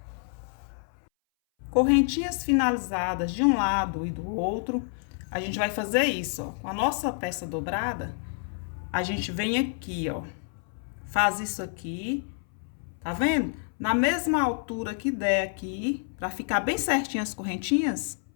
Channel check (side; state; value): right; silent; 59 dB below the other